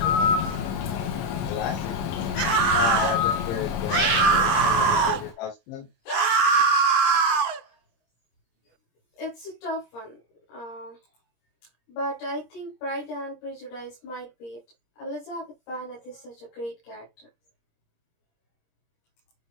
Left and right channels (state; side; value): late; right; 26 ms